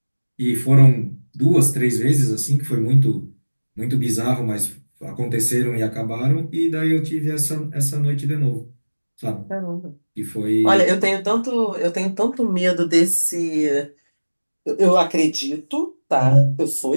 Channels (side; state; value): both; inverted; correlation -1.00